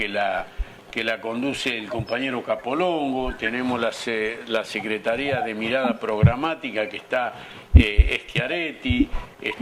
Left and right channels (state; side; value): identical; both; correlation 1.00